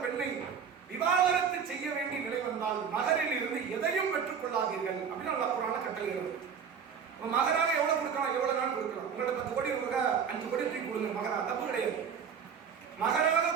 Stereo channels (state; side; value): quieter; left; 7.0 dB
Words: பெண்ணை விவாகரத்து செய்ய வேண்டிய நிலை வந்தால் மகரில் இருந்து எதையும் பெற்றுக் கொள்ளாதீர்கள் அப்படின்னு அல்லாஹ் குர்ஆன்ல கட்டளையிடுறார். மகராக எவ்வளவு கொடுக்கலாம்? எவ்வளவு நாள் கொடுக்கலாம்? உங்கள்ட்ட 10 கோடி ரூபா 5 கோடி தூக்கி கொடுங்க, மகரா தப்பு கிடையாது.